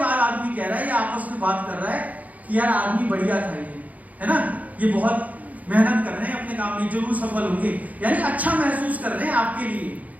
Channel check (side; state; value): left; late; 0.075 ms